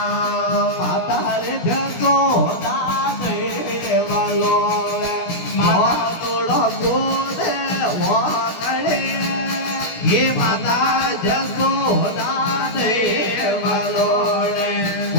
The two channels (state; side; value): late; right; 17 ms